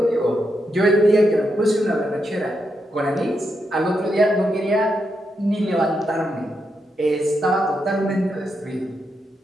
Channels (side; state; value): both; normal; correlation 0.83